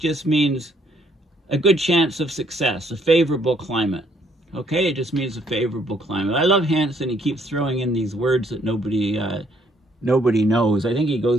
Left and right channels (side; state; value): both; normal; correlation 0.67